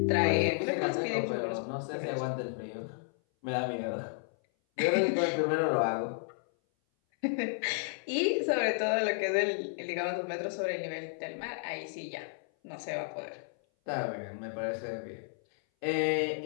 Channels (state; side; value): silent; right; 56 dB below the other